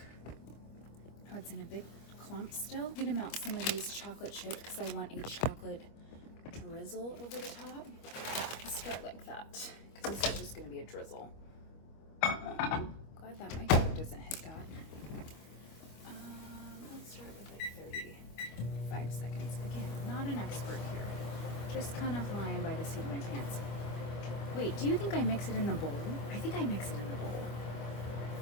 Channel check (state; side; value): late; right; 25 ms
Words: Oh, it's in a big clump still. I'm gonna melt some of these chocolate chips because I want a chocolate drizzle over the top. Let's start like that because this is just gonna be a drizzle. Glad that microwave doesn't hit that. Let's start with like 35 seconds. Again, not an expert here. Just kind of flying by the seat of my pants. Wait, do you think I mix it in the bowl? I think I mix it in the bowl.